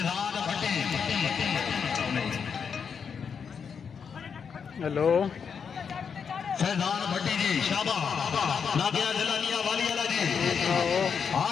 भट्टी हेलो फैजान भट्टी जी शाबा ना गया जलानिया वाली वाला जी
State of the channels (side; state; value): right; quieter; 6.5 dB